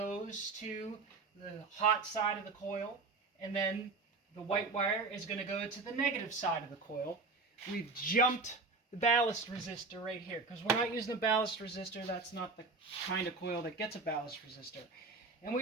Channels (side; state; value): left; quieter; 4.0 dB